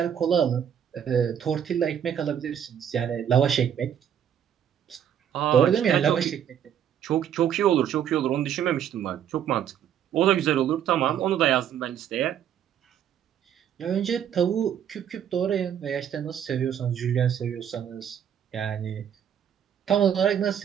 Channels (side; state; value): left; quieter; 9.2 dB